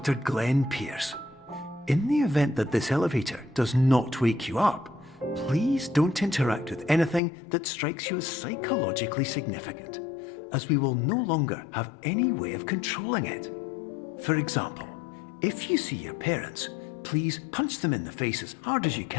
Glenn Pierce. In the event that this elevator does not wake you up, please don't interact with anything that strikes you as psychologically significant, as we will no longer have any way of controlling it. For example, if you see your parents, please punch them in the face as hard as you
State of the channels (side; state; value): right; drops out; at 7.2 s